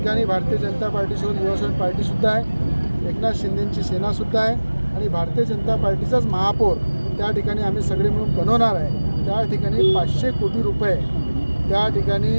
भारतीय जनता पार्टीसोबत युवासेना पार्टीसुद्धा आहे, एकनाथ शिंदेंची सेनासुद्धा आहे आणि भारतीय जनता पार्टीचाच महापौर त्या ठिकाणी आम्ही सगळे मिळून बनवणार आहे. त्या ठिकाणी 500 कोटी रुपये त्या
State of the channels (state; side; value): inverted; both; correlation -1.00